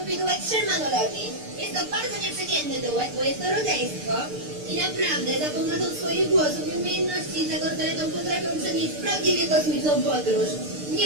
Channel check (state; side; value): late; left; 6.7 ms